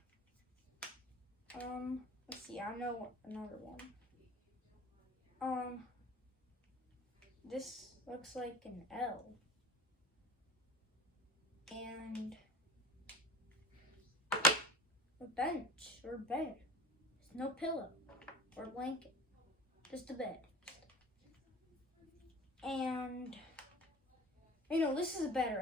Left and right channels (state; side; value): normal; both; correlation 0.41